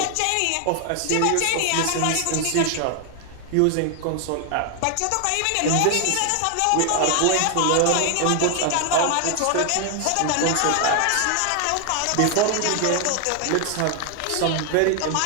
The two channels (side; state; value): both; different; correlation 0.00